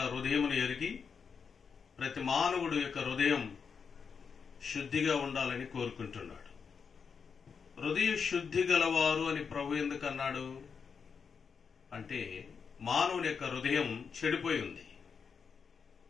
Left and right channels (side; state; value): right; quieter; 6.1 dB